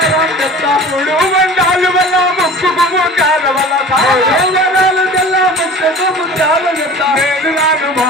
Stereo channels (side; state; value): both; normal; correlation 0.40